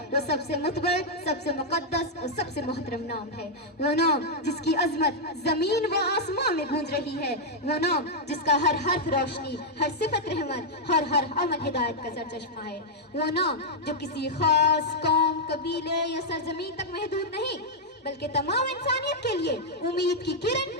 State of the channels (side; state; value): both; normal; correlation -0.04